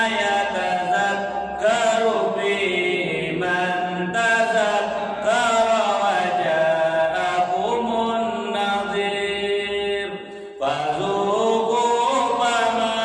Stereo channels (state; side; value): identical; both; correlation 1.00